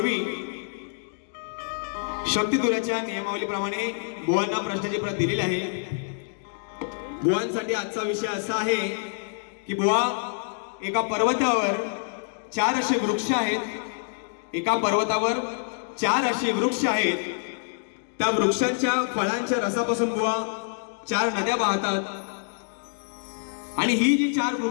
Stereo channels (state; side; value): silent; right; digital silence